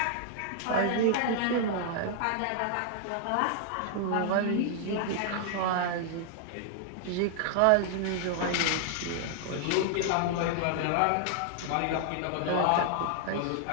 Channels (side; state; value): both; different; correlation 0.00